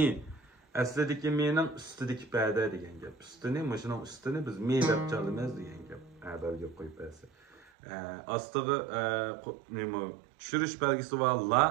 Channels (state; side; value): drops out; left; at 7.7 s